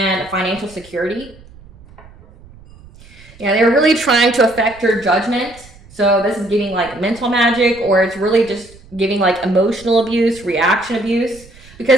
financial security. Yeah, they were really trying to affect your judgment. So this is giving like mental magic, or it's really just giving like emotional abuse, reaction abuse,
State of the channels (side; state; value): right; noise; rumble, 23 dB below the sound